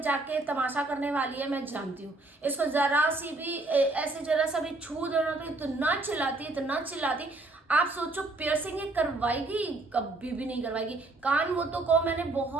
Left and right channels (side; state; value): left; quieter; 3.0 dB